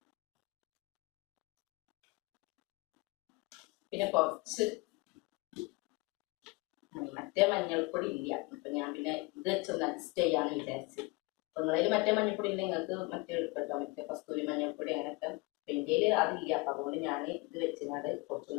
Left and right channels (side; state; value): right; quieter; 25.6 dB